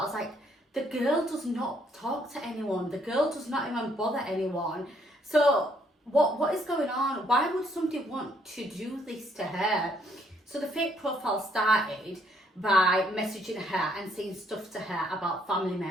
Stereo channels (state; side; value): normal; both; correlation 0.69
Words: Like, the girl does not talk to anyone. The girl does not even bother anyone. So what is going on? Why would somebody want to do this to her? So the fake profile started by messaging her and saying stuff to her about family